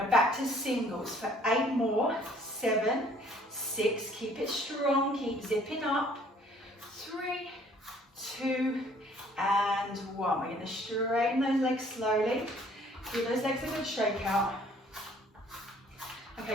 back to singles for 8 more, 7, 6, keep it strong, keep zipping up, 3, 2 and 1. We're going to straighten those legs slowly. Give those legs a good shake out.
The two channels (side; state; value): both; normal; correlation 0.58